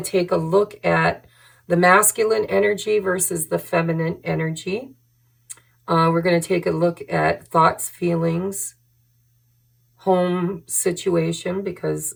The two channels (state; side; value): identical; both; correlation 1.00